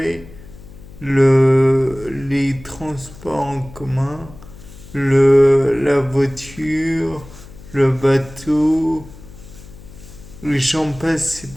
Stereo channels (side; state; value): left; noise; hum, 19 dB below the sound